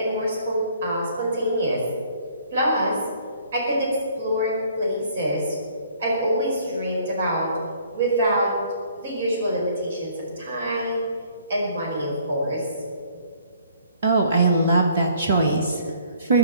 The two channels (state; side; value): inverted; both; correlation -0.60